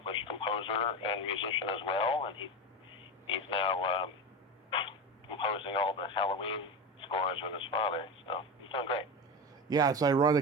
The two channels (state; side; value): normal; both; correlation 0.22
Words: composer and musician as well, and he's now composing all the Halloween scores with his father. So he's doing great. Yeah, it's